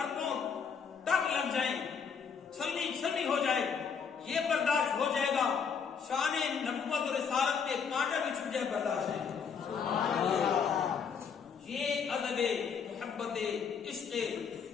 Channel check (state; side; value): quieter; right; 6.4 dB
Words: اربوں ٹک لگ جائیں، چھلنی ہو جائے، یہ برداشت ہو جائے گا، شان نبوت اور رسالت پہ کانٹا بھی چھپ جائے، برداشت ہے۔ یہ ادب محبت عشق